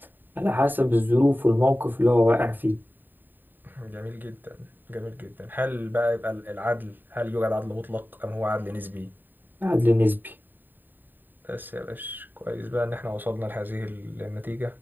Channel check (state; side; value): late; left; 0.091 ms